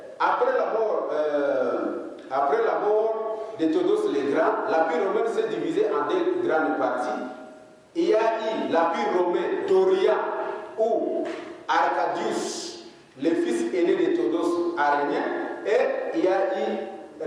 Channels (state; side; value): identical; both; correlation 1.00